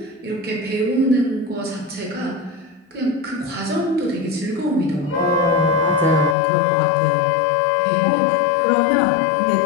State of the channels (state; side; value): drops out; right; at 6.4 s